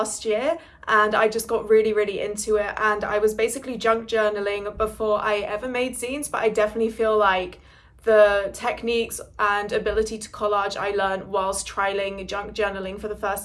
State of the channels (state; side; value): identical; both; correlation 1.00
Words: year, and I just got really into it, and I was basically junk journaling before I ever made zines, but I definitely feel like the techniques and ability to collage I learned whilst trialing junk journaling for the